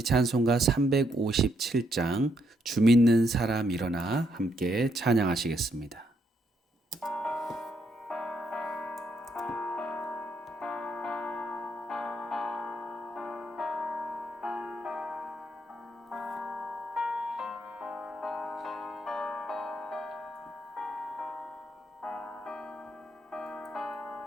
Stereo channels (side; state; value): both; normal; correlation 0.75